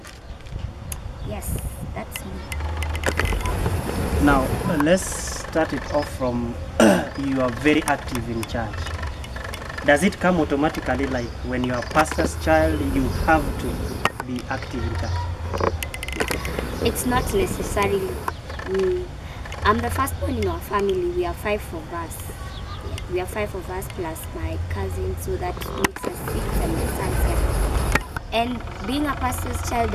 Yes, that's me. Now let's start it off from you are very active in church. Does it come automatically, like when you are a pastor's child you have to be active in church? It's not necessarily. I'm the firstborn in our family. We are 5 of us. We are 5 of us plus my cousin, so that makes us 6 and my son's 7. And being a pastor's child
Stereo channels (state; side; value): identical; both; correlation 1.00